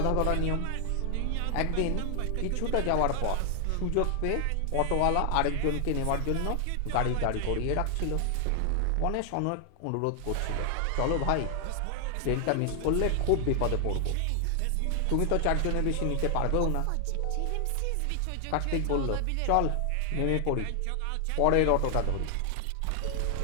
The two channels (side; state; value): both; different; correlation 0.00